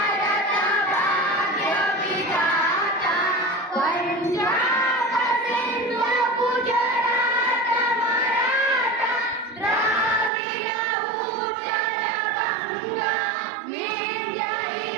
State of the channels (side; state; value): left; drops out; at 10.3 s